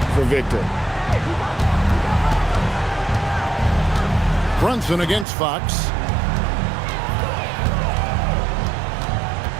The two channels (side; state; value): left; drops out; at 5.2 s